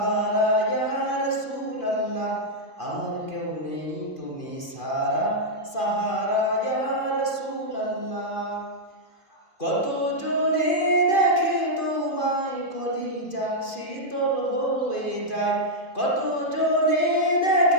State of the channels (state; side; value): late; right; 2.5 ms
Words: ইয়া রাসূলুল্লাহ, আমার কেউ নেই তুমি সারা সাহারা ইয়া রাসূলুল্লাহ। কত জনে দেখে তোমায় কলিজা শীতল হয়ে যায়, কত জনে